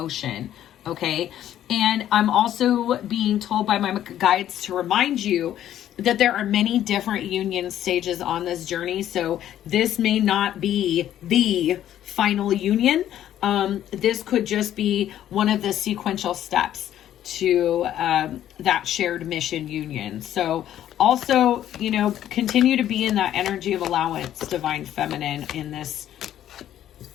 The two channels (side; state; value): right; quieter; 11.6 dB